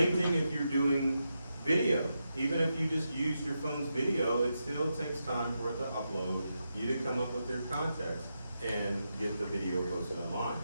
thing if you're doing video. Even if you just use your phone's video, it still takes time for it to upload, you to come up with their context and get the video posted online.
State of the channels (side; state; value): both; inverted; correlation -0.86